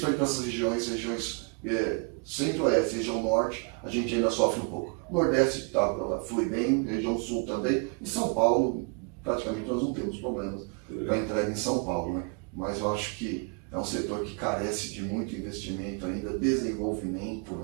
para essas regiões centro-oeste, região norte, a gente ainda sofre um pouco. Nordeste flui bem, região sul também. E São Paulo, praticamente nós não temos problemas para entrega em São Paulo, né? Mas eu acho que é um setor que carece de muito investimento ainda, desenvolvimento,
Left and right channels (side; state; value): left; quieter; 35.8 dB